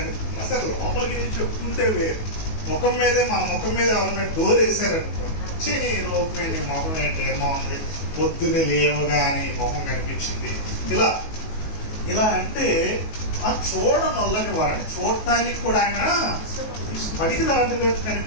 అసలు లోపలికి వెళ్ళి చెప్పుకుంటే వేరు, ముఖం మీదే మన ముఖం మీద ఎవరైనా డోర్ వేసారనుకోండి, నీ లోపం ఏంటి, ముఖం ఏంటి, ఏమో ఉంది, పొద్దున్నే లేవగానే మొహం కనిపించింది, ఇలా ఇలా అంటే ఆ చూడనొల్లని వాడిని చూడటానికి కూడా ఆయన బడికి దాటుగా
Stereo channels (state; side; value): late; right; 19 ms